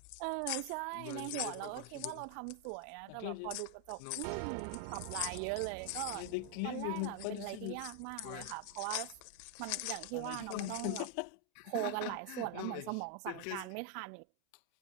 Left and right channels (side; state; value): both; different; correlation 0.00